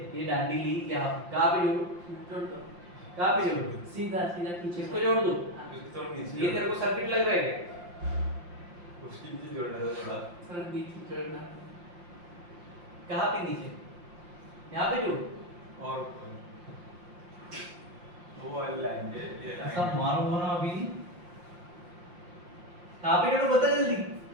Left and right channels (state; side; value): late; left; 5.7 ms